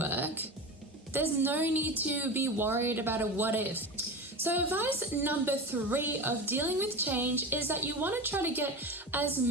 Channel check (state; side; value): normal; both; correlation 0.26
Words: there's no need to be worried about a what if. So advice number 3 of dealing with change is that you want to try to get as